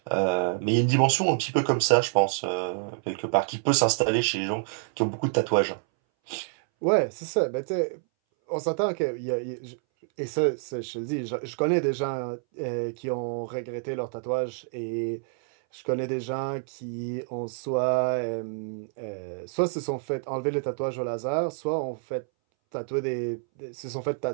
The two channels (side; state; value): left; silent; 60 dB below the other